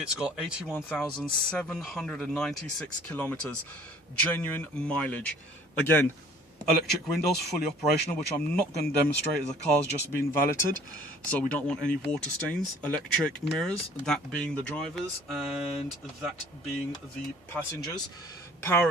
got 81,796 kilometers, genuine mileage. Again, electric windows, fully operational, which I'm not going to demonstrate as the car's just been valeted, so we don't want any water stains. Electric mirrors, that being the drivers and that being the passengers. Power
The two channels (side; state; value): both; normal; correlation 0.53